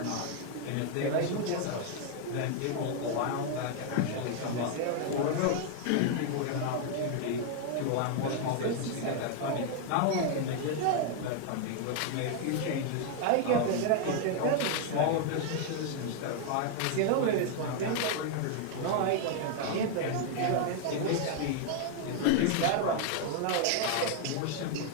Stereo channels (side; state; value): both; different; correlation 0.00